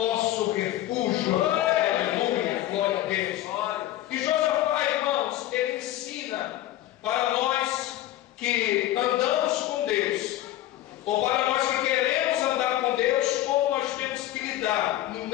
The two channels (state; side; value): quieter; right; 14.3 dB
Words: refúgio. Aleluia, glória a Deus. E Josafá, irmãos, ele ensina para nós que andamos com Deus, ou para nós que queremos andar com Deus, como nós temos que lidar no